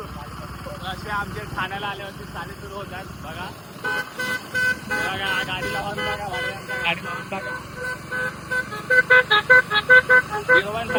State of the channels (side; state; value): both; identical; correlation 1.00